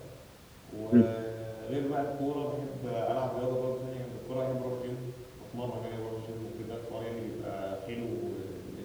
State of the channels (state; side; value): identical; both; correlation 1.00